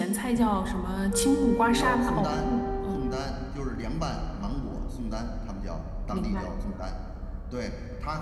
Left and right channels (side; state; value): both; identical; correlation 1.00